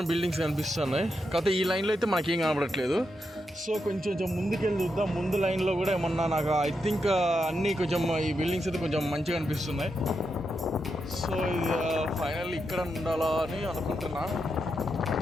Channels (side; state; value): both; normal; correlation 0.84